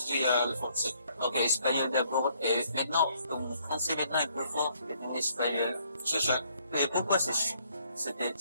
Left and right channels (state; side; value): inverted; both; correlation -0.67